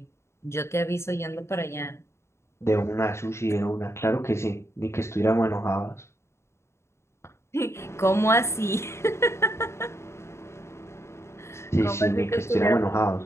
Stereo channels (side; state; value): right; late; 0.13 ms